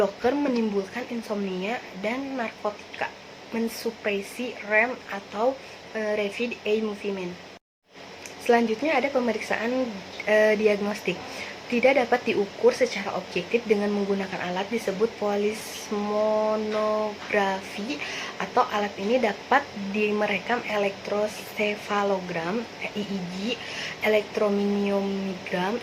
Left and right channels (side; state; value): both; identical; correlation 1.00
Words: menimbulkan insomnia, dan narkotika mensupresi REM atau rapid eye movement. Selanjutnya ada pemeriksaan diagnostik. Tidak dapat diukur secara objektif dengan menggunakan alat disebut polismonografi, atau alat ini dapat merekam elektrosefalogram (EEG), elektromiogram